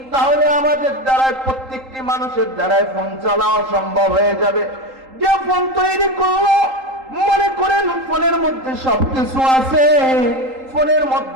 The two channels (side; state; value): left; late; 3.8 ms